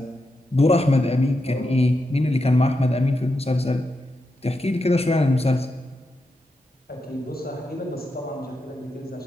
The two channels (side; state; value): both; normal; correlation 0.86